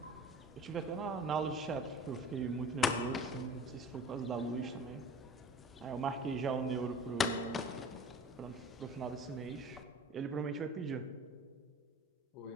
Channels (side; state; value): both; normal; correlation 0.43